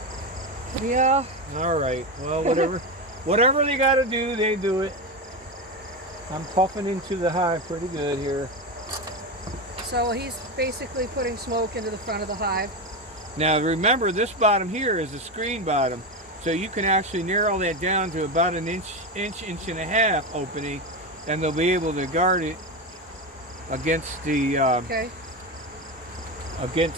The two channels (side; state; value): both; normal; correlation 0.16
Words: way. Yeah. All right. Well, whatever. Whatever they got to do, they do it. I'm puffing into the hive pretty good here. So he's basically putting smoke into the front of the hive. Now remember, this bottom here is a screen bottom, so you can actually narrow that down to about an inch and a half opening, and they'll be able to guard it against the Okay.